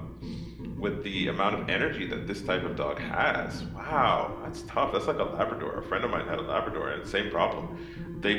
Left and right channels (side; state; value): both; identical; correlation 1.00